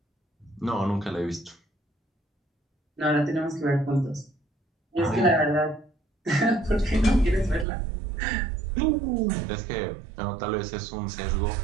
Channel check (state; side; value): drops out; left; at 7.7 s